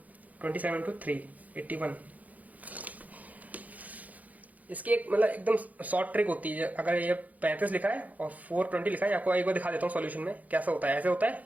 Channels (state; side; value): late; left; 0.077 ms